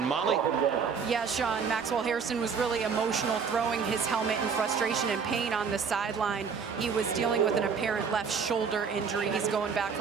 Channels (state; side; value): quieter; left; 6.0 dB